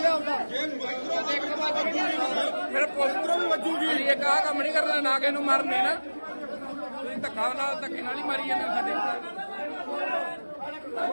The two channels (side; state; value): both; inverted; correlation -1.00